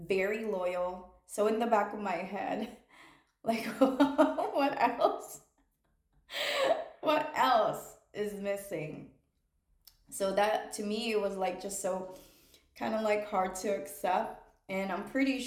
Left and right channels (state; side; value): identical; both; correlation 1.00